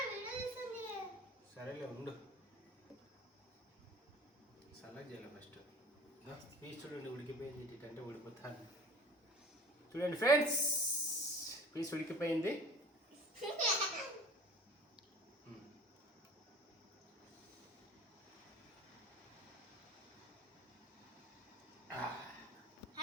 సరేలే ఉండు సల్లగా చేయాలి ఫస్ట్ పీస్ చూడండి ఉడికిపోయింది ఇటంటే ఉడిపోతాను చూడండి ఫ్రెండ్స్ పీస్ ఉడికిపోయింది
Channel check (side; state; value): both; normal; correlation 0.43